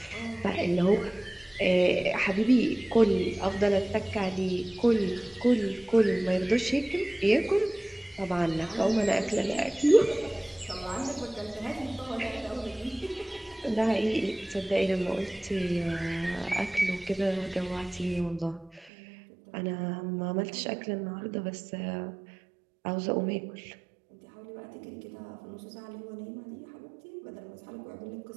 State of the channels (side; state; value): left; drops out; at 18.9 s